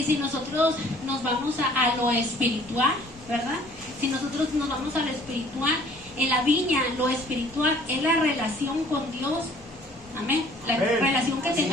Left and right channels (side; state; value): left; noise; rumble, 25 dB below the sound